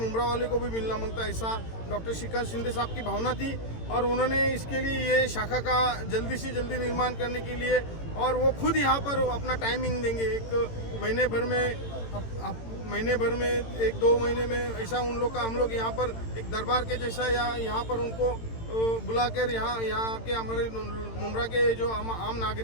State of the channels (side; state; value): right; late; 18 ms